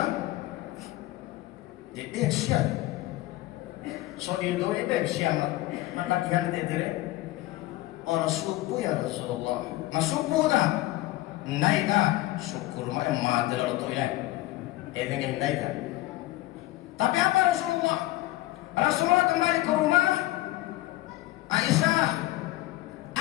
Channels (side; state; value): right; quieter; 17.6 dB